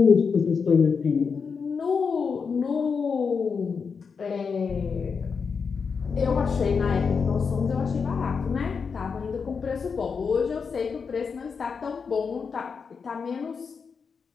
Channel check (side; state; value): right; quieter; 5.6 dB